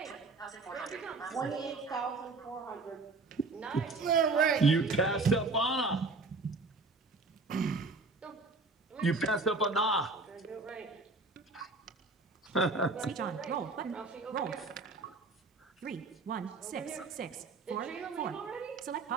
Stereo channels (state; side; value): quieter; left; 3.6 dB